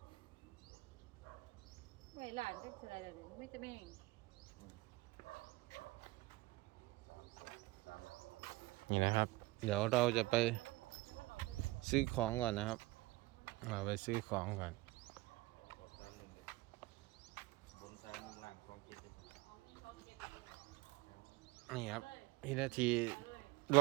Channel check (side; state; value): left; quieter; 20.6 dB